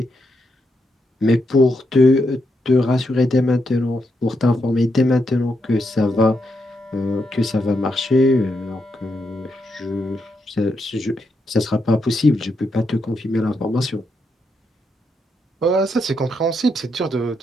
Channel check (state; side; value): normal; both; correlation 0.81